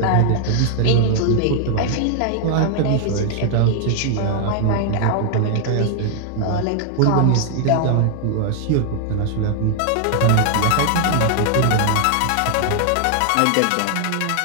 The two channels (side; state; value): both; different; correlation 0.00